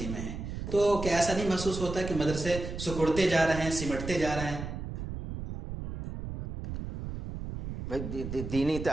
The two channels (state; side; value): noise; right; rumble, 7 dB below the sound